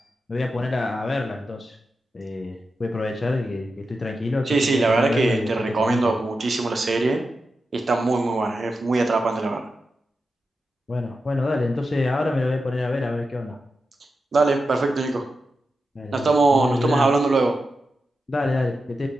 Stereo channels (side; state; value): both; normal; correlation 0.90